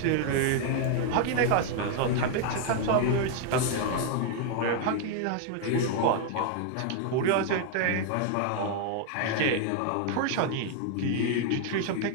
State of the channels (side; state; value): both; different; correlation 0.00